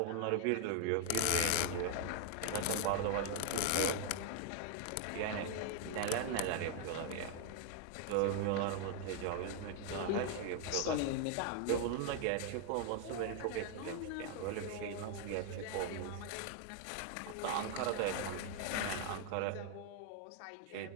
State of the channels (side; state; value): both; different; correlation 0.01